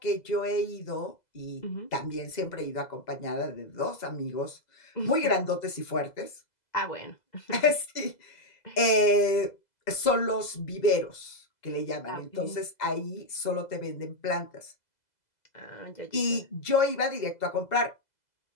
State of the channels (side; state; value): right; late; 2.0 ms